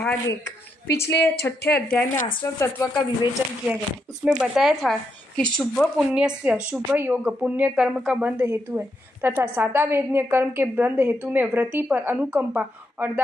1। पिछले 6ठे अध्याय में आश्रम तत्व का विवेचन किया गया। उसमें बताया था कि शुभ पुण्य से शुभ योग पुण्य कर्म का बंध हेतु है तथा सादावेद्य कर्म के बंध हेतु में व्रति पर अनुकंपा और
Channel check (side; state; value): both; normal; correlation 0.81